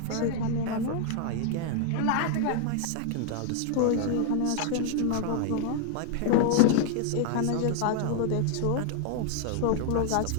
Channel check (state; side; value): different; both; correlation 0.00